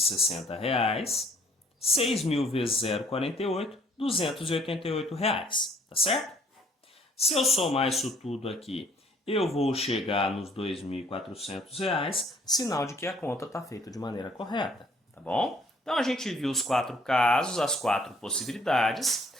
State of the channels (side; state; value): both; normal; correlation 0.61